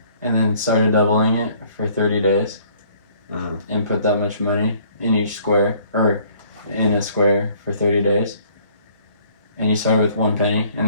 and then started doubling it for 30 days and put that much money in each square, or in a square for 30 days, and you started with 1 penny,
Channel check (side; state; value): both; inverted; correlation -0.59